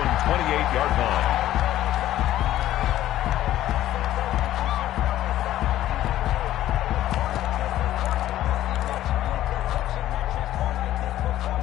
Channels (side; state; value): right; quieter; 13.4 dB